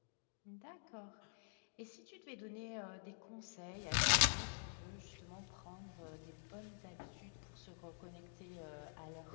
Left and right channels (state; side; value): silent; right; digital silence